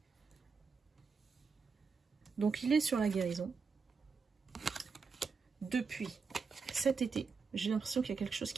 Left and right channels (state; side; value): quieter; left; 5.2 dB